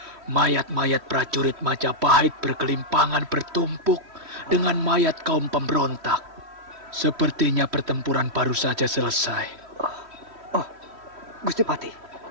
Mayat-mayat prajurit Majapahit berkelimpangan bertumpuk dengan mayat kaum pemberontak. Sepertinya pertempuran baru saja selesai. Gusti Pati,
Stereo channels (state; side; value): late; left; 3.1 ms